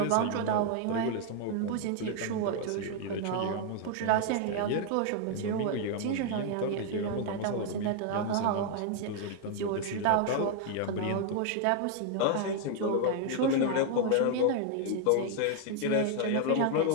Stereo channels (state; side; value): different; both; correlation 0.00